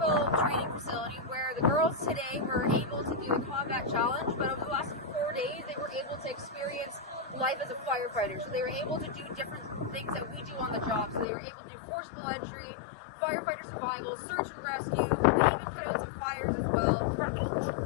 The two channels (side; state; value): right; drops out; at 11.2 s